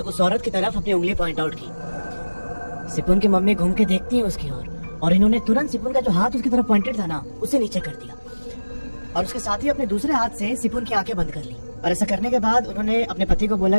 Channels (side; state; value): both; inverted; correlation -1.00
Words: औरत की तरफ अपनी उंगली पॉइंट आउट की। सिपुन की मम्मी घूम के देखती है उसकी ओर और इन्होंने तुरंत सिपुन का जो हाथ उसकी तरफ पॉइंटेड था ना उसे नीचे कर दिया और उसके साथ ही अपने दूसरे हाथ से सिपुन की आंखें बंद कर ली। और ऐसा करने के बाद उन्होंने अपने पति को बोला